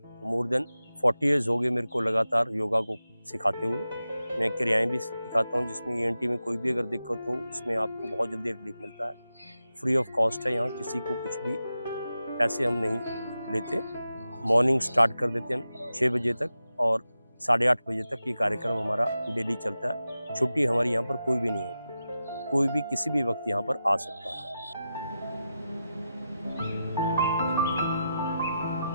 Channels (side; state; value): both; inverted; correlation -0.90